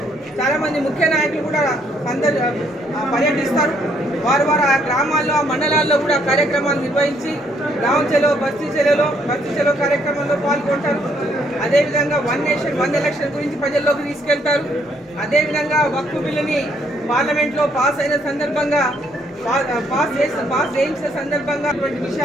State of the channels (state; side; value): normal; both; correlation 0.69